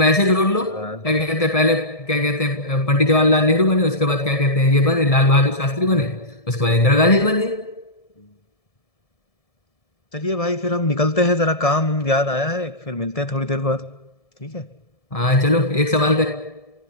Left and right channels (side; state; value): right; late; 1.7 ms